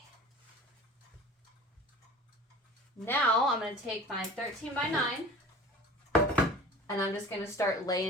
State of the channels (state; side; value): normal; both; correlation 0.41